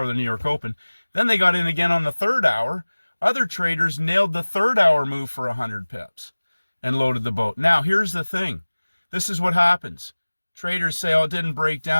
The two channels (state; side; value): inverted; both; correlation -1.00